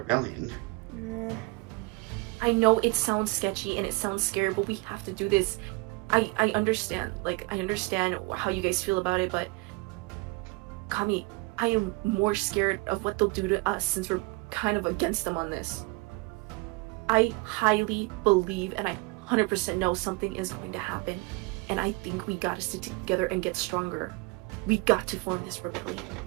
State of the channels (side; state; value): left; quieter; 25.7 dB